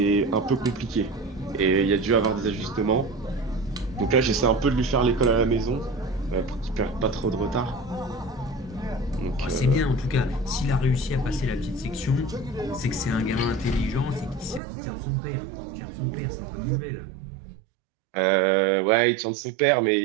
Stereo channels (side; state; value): left; drops out; at 14.6 s